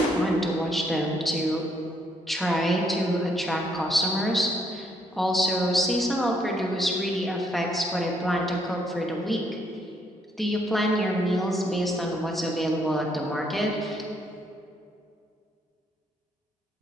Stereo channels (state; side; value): normal; both; correlation 0.72